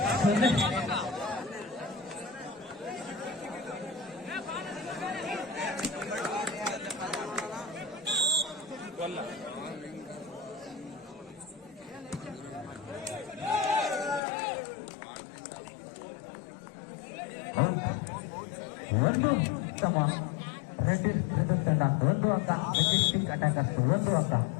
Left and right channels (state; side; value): drops out; right; at 14.2 s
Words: ಒಂದು ಸಮ ರೆಡ್ಡಿ ತಂಡ ಒಂದು ಅಂಕ, ಮೆಜೆಸ್ಟಿಕ್ ಅಟ್ಯಾಕರ್ಸ್ ಒಂದು ಅಂಕ.